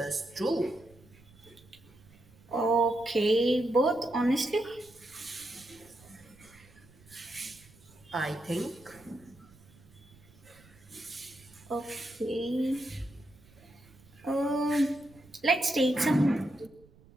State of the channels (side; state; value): right; noise; rumble, 25 dB below the sound